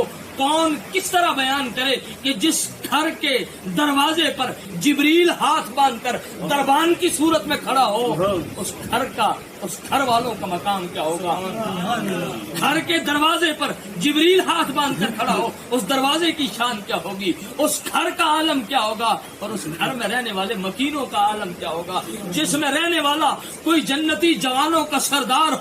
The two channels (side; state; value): both; identical; correlation 1.00